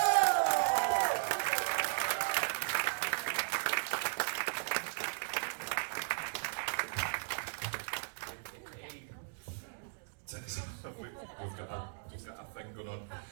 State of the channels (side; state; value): left; silent; digital silence